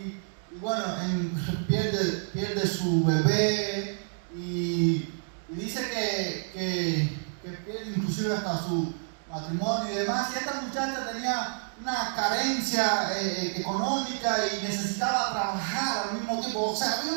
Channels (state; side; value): silent; left; digital silence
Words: Y bueno, pierde su bebé y dice que pierde inclusive hasta su matrimonio y demás. Y esta muchacha tenía una carencia económica y necesitaba trabajar al mismo tiempo. O sea, había